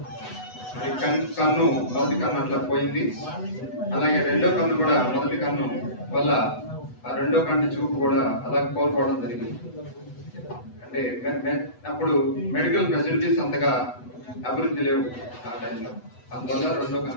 కన్ను మొదటి కన్ను అట్లా పోయింది. అలాగే రెండో కన్ను కూడా మొదటి కన్ను వల్ల ఆ రెండో కన్ను చూపు కూడా అలా కోల్పోవడం జరిగింది. అంటే అప్పుడు మెడికల్ ఫెసిలిటీస్ అంతగా అభివృద్ధి లేవు ఆ టైంలో, అందువల్ల రెండో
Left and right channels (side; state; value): right; late; 8.0 ms